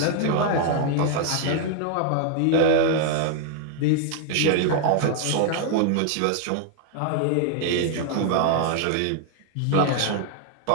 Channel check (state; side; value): different; both; correlation 0.00